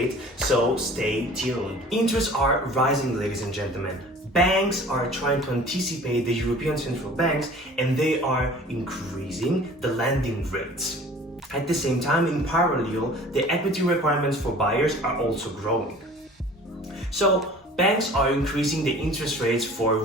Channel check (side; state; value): both; normal; correlation 0.46